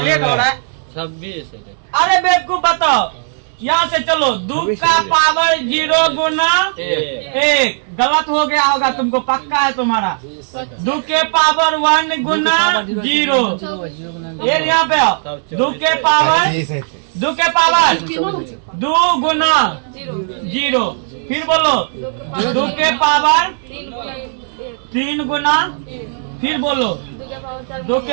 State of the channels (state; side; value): silent; left; 69 dB below the other